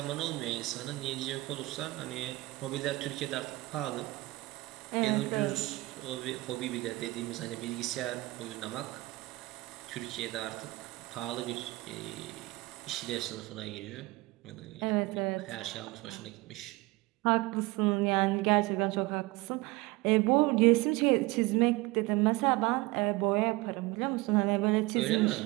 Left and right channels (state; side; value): quieter; left; 21.1 dB